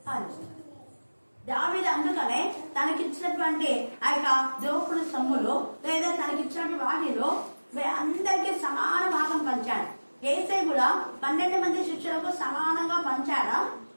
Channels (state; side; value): inverted; both; correlation -1.00